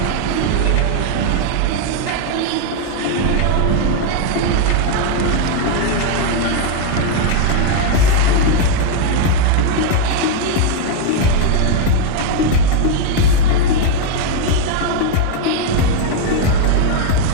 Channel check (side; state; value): both; different; correlation 0.01